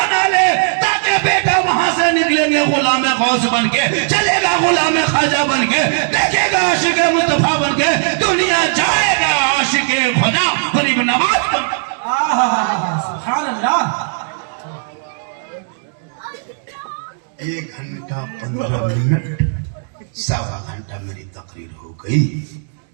ले ताकि बेटा वहां से निकलेंगे गुलाम गौस बन के, चलेगा गुलाम ख्वाजा बन के, देखेगा आशिक मुस्तफा बन के, दुनिया जाएगा आशिक खुदा गरीब नवाज बन। सुभान अल्लाह। 1 घंटा 15 मिनट, 1.25 घंटा मेरी तकरीर हो गई।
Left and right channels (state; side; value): silent; left; digital silence